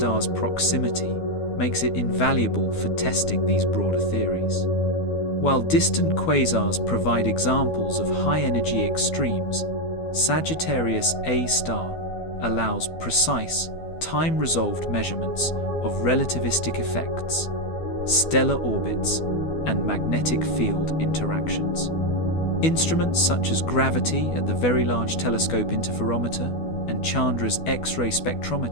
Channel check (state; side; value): late; right; 12 ms